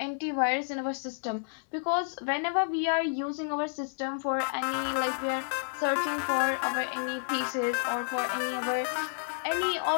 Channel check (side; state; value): right; silent; digital silence